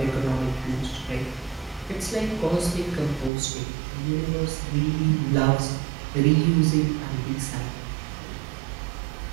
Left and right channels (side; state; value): left; drops out; at 3.3 s